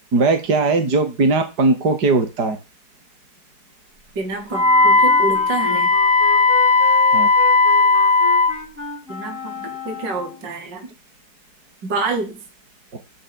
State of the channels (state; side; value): late; left; 4.7 ms